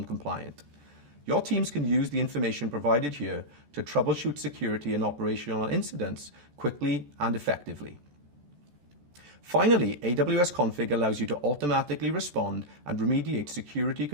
Your teams can use the information provided here to troubleshoot security and operational incidents quickly and effectively. Finally, Aws Config allows you to automatically respond and remediate security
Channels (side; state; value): left; late; 14 ms